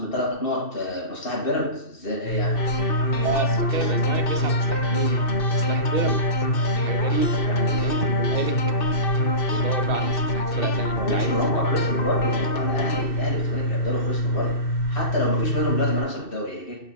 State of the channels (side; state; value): right; late; 2.6 ms